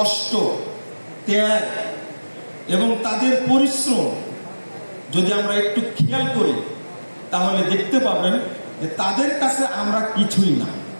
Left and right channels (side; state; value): both; inverted; correlation -1.00